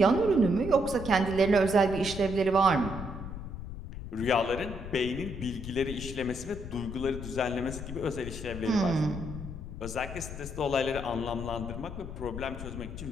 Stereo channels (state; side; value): noise; left; rumble, 9 dB below the sound